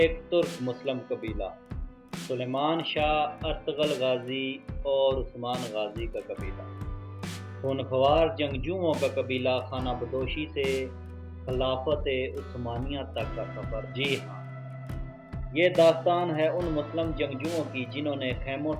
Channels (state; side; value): identical; both; correlation 1.00